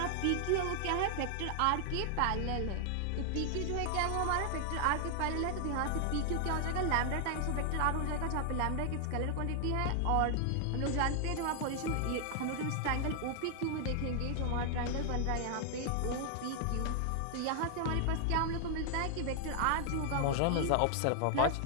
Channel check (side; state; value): both; different; correlation 0.00